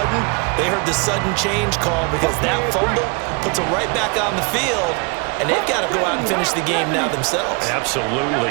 they heard the sudden change call because that fumble puts them right back on the field, and they've got to go out and finish the game now themselves.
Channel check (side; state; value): left; quieter; 32.9 dB